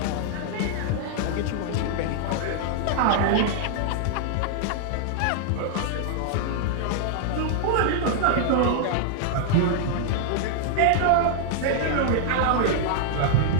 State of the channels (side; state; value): both; different; correlation -0.01